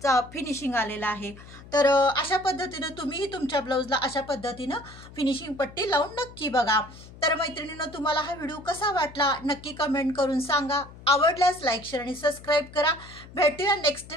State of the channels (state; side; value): noise; left; hum, 18 dB below the sound